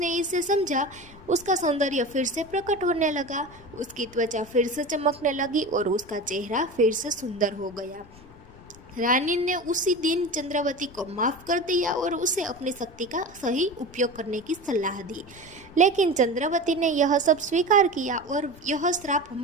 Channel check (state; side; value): noise; left; rumble, 21 dB below the sound